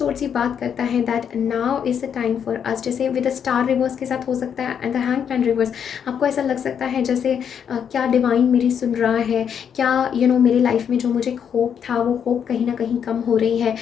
ये बात करता है that now is the time for us. जैसे विद द स्टार रिवर्स के साथ हो सकता है एंड द हैंगमैन रिवर्स, आपको ऐसा लग सकता है जैसे क्या डिवाइन मेरी सुन रहा है, क्या मेरी लाइफ में जो मुझे होप था वो होप कहीं ना कहीं कम हो रही है।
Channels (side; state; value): right; quieter; 8.0 dB